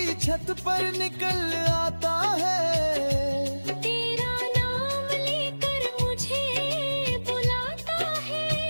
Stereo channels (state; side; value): inverted; both; correlation -1.00